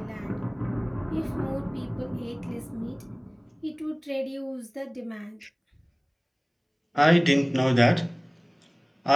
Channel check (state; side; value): identical; both; correlation 1.00